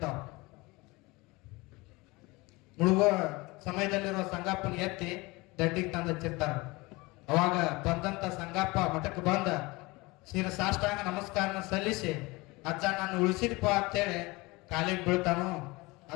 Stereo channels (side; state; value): right; quieter; 23.4 dB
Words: ಮುಳುಗೋ ಸಮಯದಲ್ಲಿರುವ ಸಂಗಪ್ಪನ ಎತ್ತಿ ದಂಡಿಗೆ ತಂದು ಹಚ್ಚಿರ್ತಾರ. ಅವಾಗ ಬಂದಂತ ಸಂಗಪ್ಪ ಮಠಕ್ಕೆ ಬಂದ ಸಾಷ್ಟಾಂಗ ನಮಸ್ಕಾರನ ಸಲ್ಲಿಸಿ, ಅಜ್ಜ ನಾನು ಉಳಿಸಿದಪ್ಪ ಅಂತೇಳಿ ಕಾಲಿಗೆ ಬೀಳ್ತಾನು.